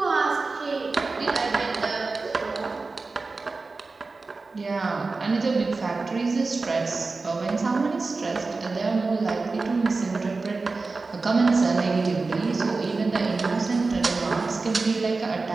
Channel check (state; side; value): quieter; left; 3.8 dB